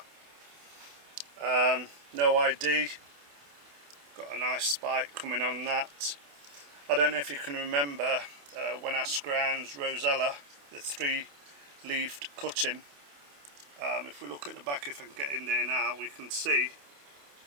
No ID, got a nice spike coming on that. I don't know if you can remember when I scrounged Rosella, the 3-leafed cutting. If we look at the back, if I can get in there now, we can see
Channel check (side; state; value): left; late; 28 ms